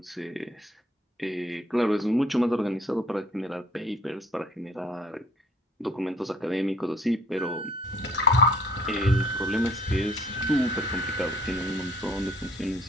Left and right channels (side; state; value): both; normal; correlation 0.58